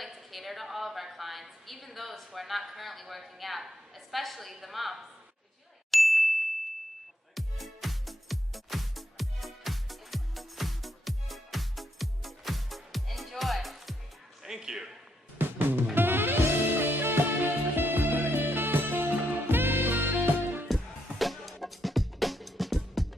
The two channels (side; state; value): both; normal; correlation 0.78